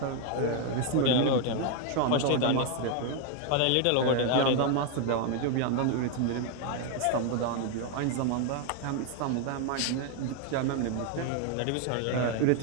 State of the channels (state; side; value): different; both; correlation 0.01